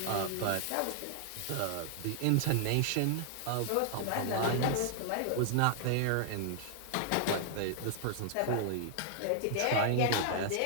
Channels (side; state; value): both; different; correlation 0.00